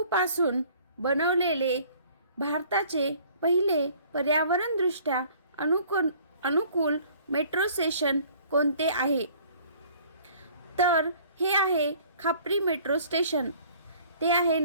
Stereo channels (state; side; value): inverted; both; correlation -0.54